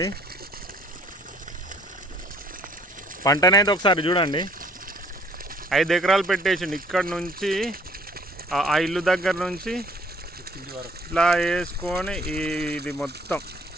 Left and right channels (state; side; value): normal; both; correlation 0.59